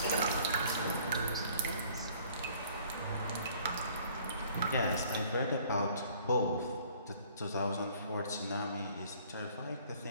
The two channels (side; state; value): both; inverted; correlation -0.57